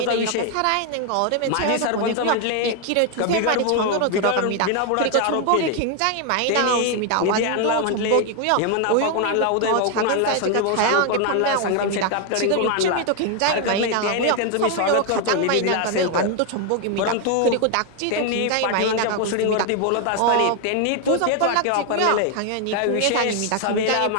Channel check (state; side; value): different; both; correlation 0.01